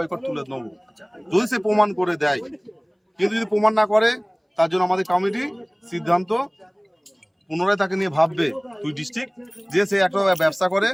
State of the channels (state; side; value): identical; both; correlation 1.00